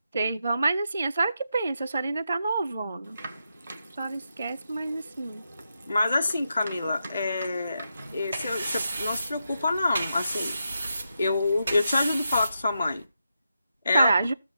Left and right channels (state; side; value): inverted; both; correlation -0.85